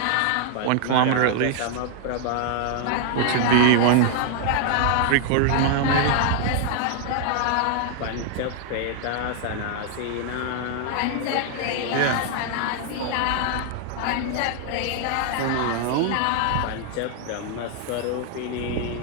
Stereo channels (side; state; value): both; different; correlation 0.00